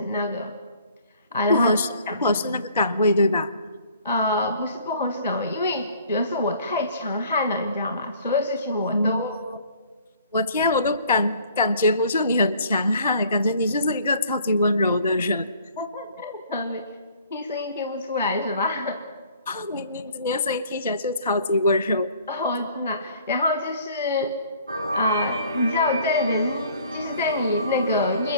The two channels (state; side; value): inverted; both; correlation -0.56